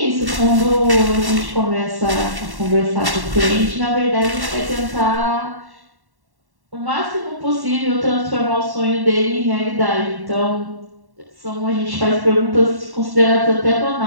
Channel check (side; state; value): left; late; 1.1 ms